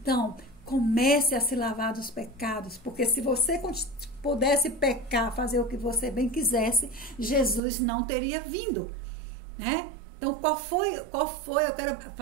comece a se lavar dos pecados, porque se você pudesse pecar, fazer o que você bem quisesse, Jesus não teria vindo, né? Então, qual foi? Eu quero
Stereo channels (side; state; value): left; drops out; at 7.6 s